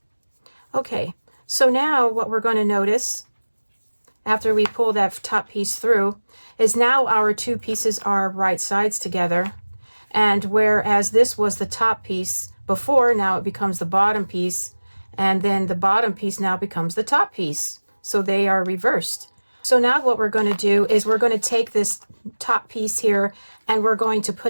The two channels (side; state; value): both; inverted; correlation -1.00